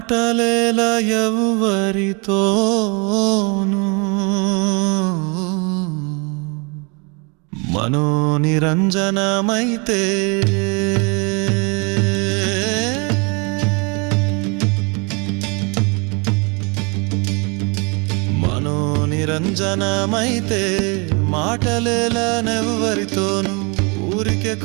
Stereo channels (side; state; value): left; quieter; 31.7 dB